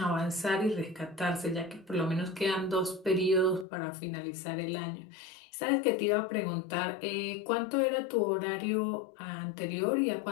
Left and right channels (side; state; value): right; drops out; at 3.7 s